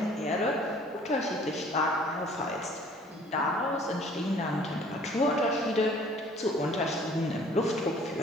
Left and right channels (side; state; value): both; normal; correlation 0.54